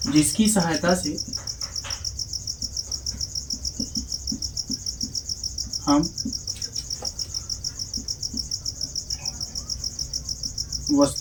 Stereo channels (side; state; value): both; identical; correlation 1.00